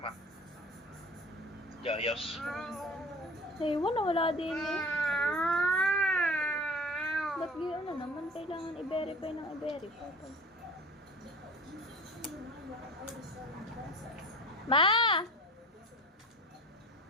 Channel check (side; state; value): both; normal; correlation 0.39